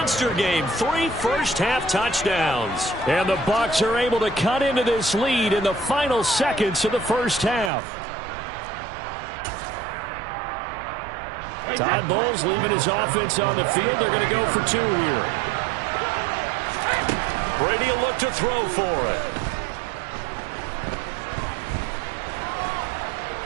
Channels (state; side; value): drops out; left; at 7.7 s